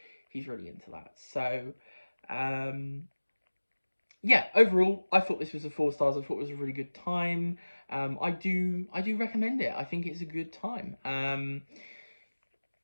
he's really into that. So yeah, overall, I thought this was a 4 stars. I thought it was a really good time. I do recommend it. I think it's a good time.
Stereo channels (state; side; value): inverted; both; correlation -1.00